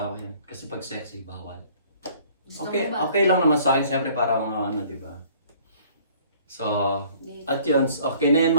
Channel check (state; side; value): inverted; both; correlation -0.56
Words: yan. Kasi pag sexy, bawal. Gusto Okay, mo ba? okay lang naman sa akin. Siyempre para mga diba? So, at yun. Okay na yun